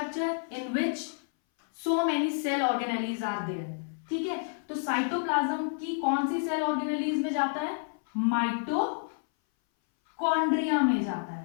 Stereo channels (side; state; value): right; silent; 58 dB below the other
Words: in which so many cell organelles are there. ठीक है, तो साइटोप्लाज्म की कौन सी सेल ऑर्गेनेलीज में जाता है, माइटोकॉन्ड्रिया में जाता